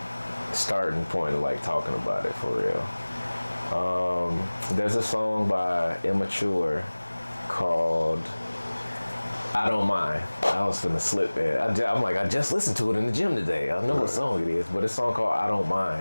starting point of like talking about it for real. There's a song by Immature called I Don't Mind. I was finna slip there. I'm like, I just listened to it in the gym today. I know what song it is, but it's a song called I Don't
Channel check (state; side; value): inverted; both; correlation -1.00